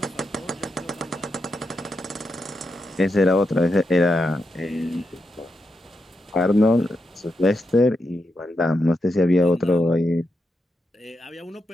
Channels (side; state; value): both; normal; correlation 0.85